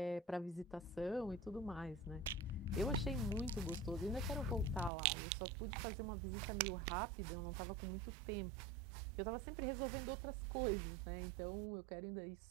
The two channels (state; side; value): drops out; left; at 4.9 s